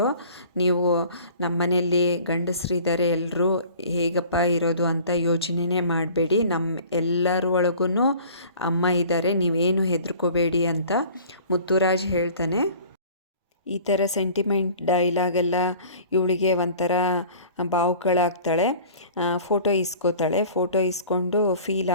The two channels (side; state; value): both; inverted; correlation -0.47